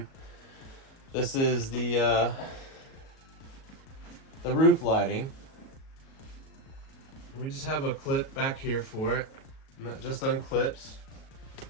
this is the the roof lighting. We just have a clip back here for it, and that just unclips.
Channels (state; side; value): late; right; 37 ms